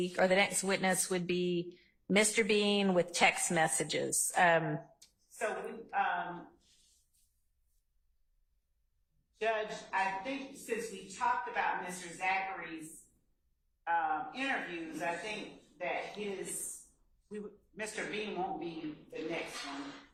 or the next witness would be Mr. Bean with text messages. So Judge, I think since we talked about Mr. Zachary's interviews, I think that Mr. Bean won't be the next one.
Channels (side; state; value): both; identical; correlation 1.00